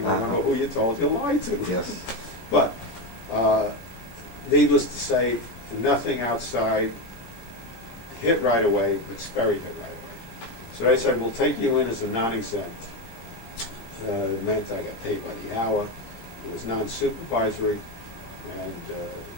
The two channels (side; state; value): right; late; 17 ms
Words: remember who you told you lied to. Yes. But needless to say, nothing outside hit right away, but Sperry hit right away. So they said, we'll take you in as a non-exempt. It meant I got paid by the hour. It was non-supervisory. And